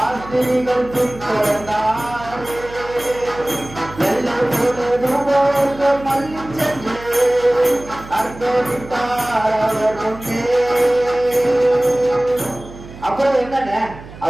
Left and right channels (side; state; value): right; noise; hum, 16 dB below the sound